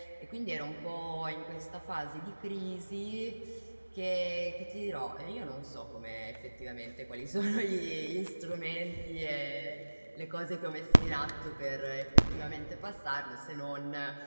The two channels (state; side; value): inverted; both; correlation -1.00